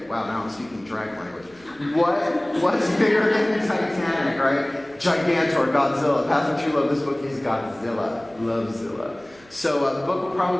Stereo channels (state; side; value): noise; right; hum, 27 dB below the sound